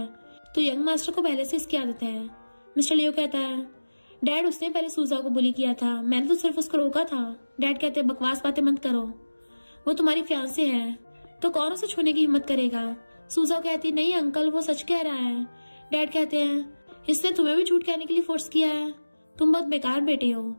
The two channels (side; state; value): both; inverted; correlation -1.00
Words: तो यंग मास्टर को पहले से इसकी आदत है। मिस्टर लियो कहता है, डैड उसने पहले सूजा को बुली किया था, मैंने तो सिर्फ उसको रोका था। डैड कहते हैं, बकवास बातें मत करो, वो तुम्हारी फियांसे है तो कौन उसे छूने की हिम्मत करेगा? सूजा कहती, नहीं अंकल, वो सच कह रहा है। डैड कहते हैं, इसने तुम्हें भी झूठ कहने के लिए फोर्स किया है, तुम बहुत बेकार बेटे हो,